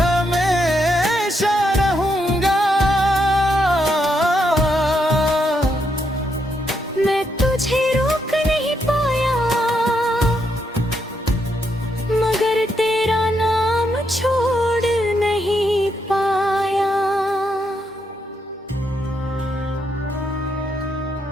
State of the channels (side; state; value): both; normal; correlation 0.79